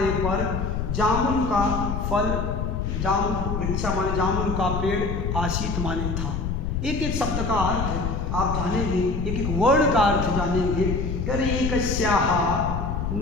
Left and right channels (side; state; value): left; noise; rumble, 2 dB below the sound